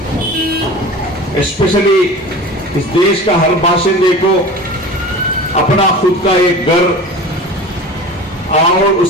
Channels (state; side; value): normal; both; correlation 0.36